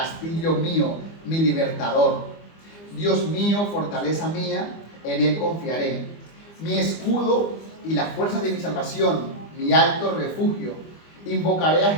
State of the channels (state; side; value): late; right; 25 ms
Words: mío, mi libertador. Dios mío, fortaleza mía, en él confiaré. Mi escudo y la fuerza de mi salvación, mi alto refugio. Invocaré a